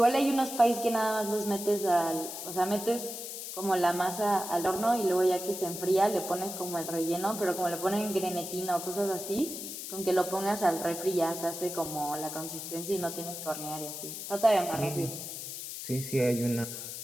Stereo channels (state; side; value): noise; left; hiss, 8 dB below the sound